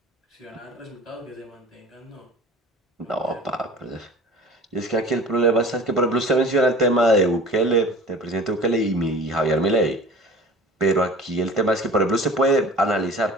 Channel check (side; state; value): both; normal; correlation 0.42